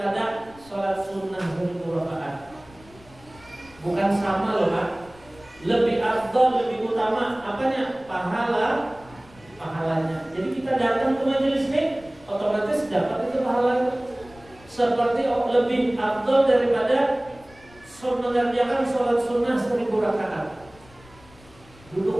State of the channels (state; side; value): noise; left; rumble, 24 dB below the sound